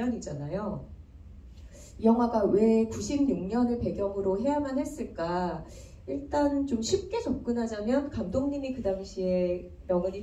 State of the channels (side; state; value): both; identical; correlation 1.00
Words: 이 영화가 왜 96년을 배경으로 해야만 했을까? 일단 좀 쉽게 접근하자면 감독님이 그 당시에